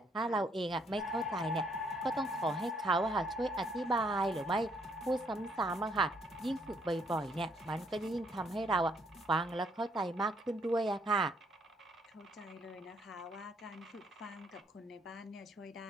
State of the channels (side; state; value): both; normal; correlation 0.69